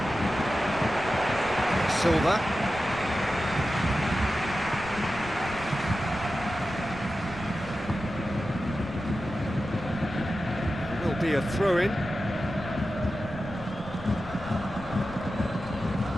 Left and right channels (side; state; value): left; noise; rumble, 15 dB below the sound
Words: Silva. Will be a throw-in.